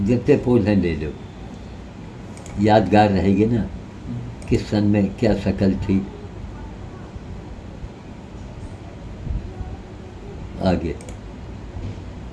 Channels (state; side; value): identical; both; correlation 1.00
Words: जितने पोज हैं ले लो, यादगार रहेगी ना किस सन में क्या शक्ल थी। आगे